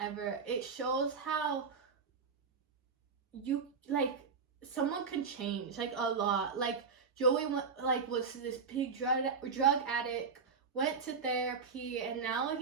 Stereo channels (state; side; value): quieter; left; 5.3 dB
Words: It shows how someone can change, like, a lot. Like, Joey was this big drug addict, went to therapy, and now